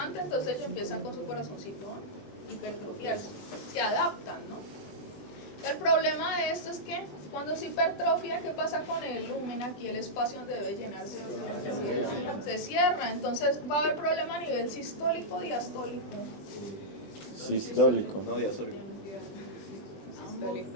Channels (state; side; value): late; right; 20 ms